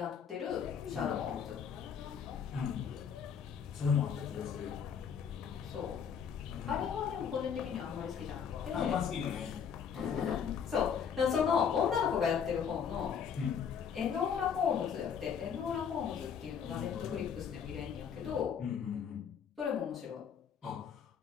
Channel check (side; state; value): right; quieter; 7.3 dB